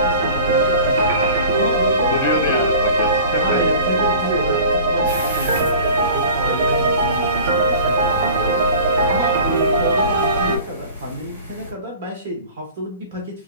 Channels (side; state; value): both; inverted; correlation -0.42